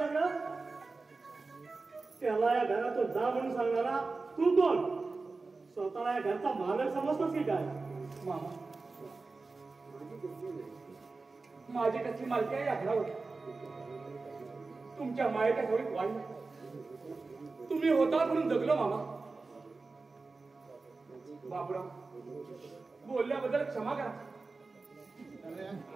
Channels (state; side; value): quieter; left; 3.8 dB